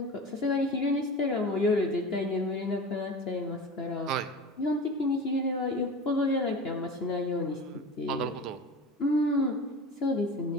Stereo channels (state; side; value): normal; both; correlation 0.33